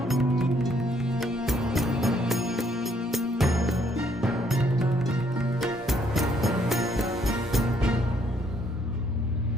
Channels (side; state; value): both; normal; correlation 0.68